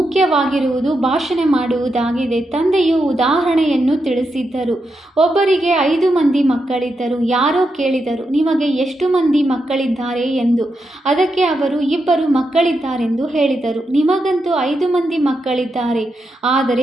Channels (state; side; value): normal; both; correlation 0.85